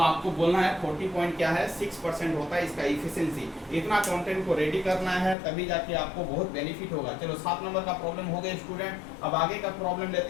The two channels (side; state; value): right; drops out; at 5.4 s